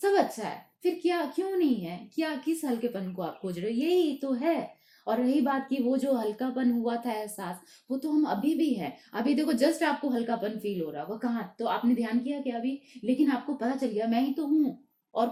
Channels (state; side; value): identical; both; correlation 1.00